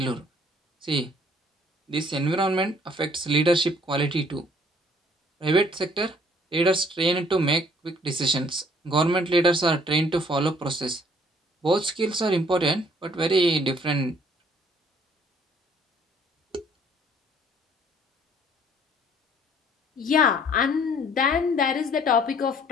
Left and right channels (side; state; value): both; normal; correlation 0.60